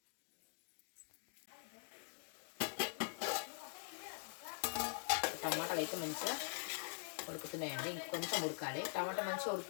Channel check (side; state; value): right; silent; digital silence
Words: టమాటాలు అయితే మంచిగా ఉడుకుతున్నాయండి. ఇంకొంచెం ఉడకాలి. టమాటా మంచిగా